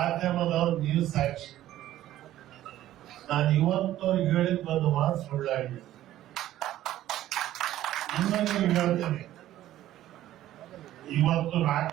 ನೀವು ಸಾಕ್ಷಿ. ನಾನು ಇವತ್ತವ್ರಿಗೆ ಹೇಳಿದ್ ಒಂದು ಮಾತು ಸುಳ್ಳಾಗಿದೆ. ಇನ್ನೊಂದು ಹೇಳ್ತೇನೆ, ಇವತ್ತು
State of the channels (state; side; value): quieter; left; 13.6 dB